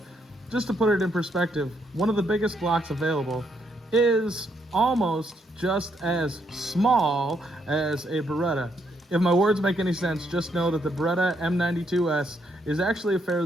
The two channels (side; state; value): both; normal; correlation 0.75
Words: just to put it in perspective, one of the biggest Glocks available is almost just as small as a Beretta. If my words make any sense, just know that the Beretta M92S is actually a